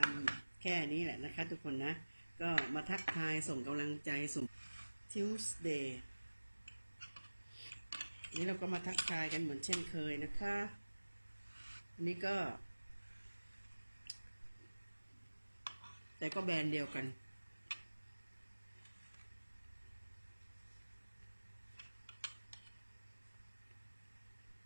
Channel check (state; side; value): inverted; both; correlation -1.00